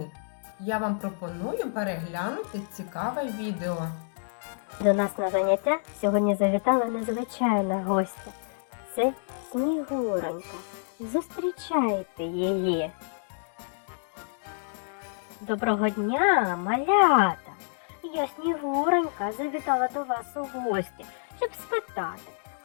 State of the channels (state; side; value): silent; right; digital silence